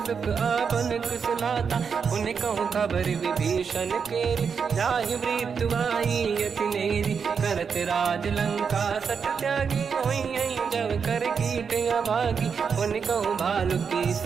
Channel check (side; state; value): left; quieter; 6.2 dB